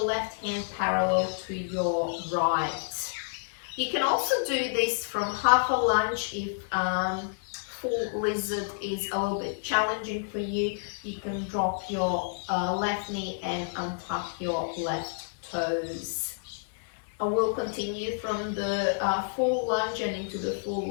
left hand parallel to your right. You can also do this from half a lunge if full lizard is a little bit challenging for you. You can drop your left knee and untuck your left toes. And we'll continue from the full lunge and into the full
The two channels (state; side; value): silent; right; digital silence